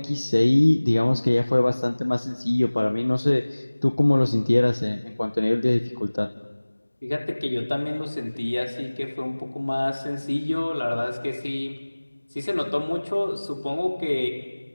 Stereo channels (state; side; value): inverted; both; correlation -1.00